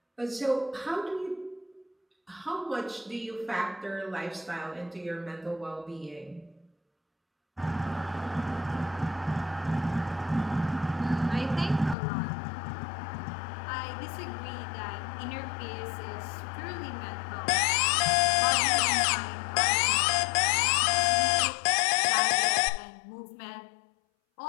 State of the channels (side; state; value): right; drops out; at 12.0 s